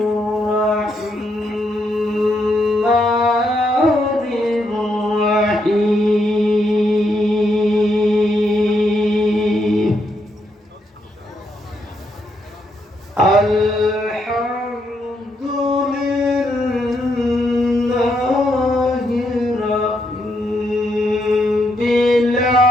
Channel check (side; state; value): both; normal; correlation 0.78